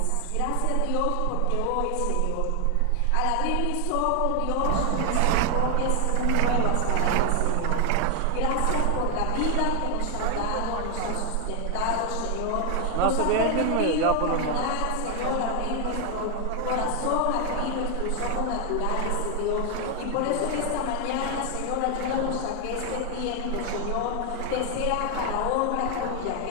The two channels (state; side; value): different; both; correlation 0.00